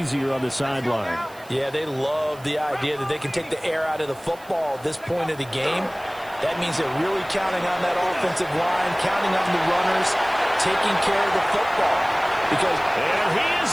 on the sideline. Yeah, they love the idea that they can take the air out of the football at this point of the game. That means they're really counting on that offensive line, counting on the runners, taking care of the football. Because and he is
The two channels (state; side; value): noise; right; hiss, 24 dB below the sound